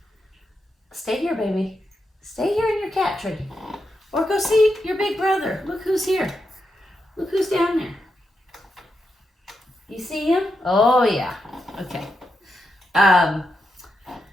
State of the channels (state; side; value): normal; both; correlation 0.86